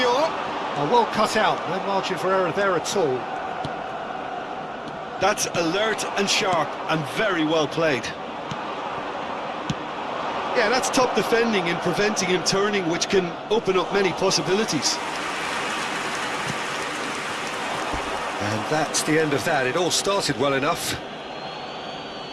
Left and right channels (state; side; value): identical; both; correlation 1.00